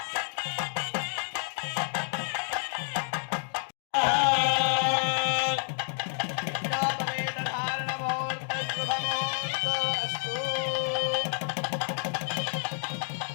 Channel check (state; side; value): silent; right; digital silence